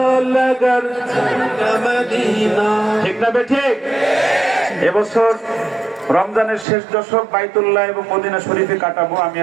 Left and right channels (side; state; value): left; drops out; at 6.7 s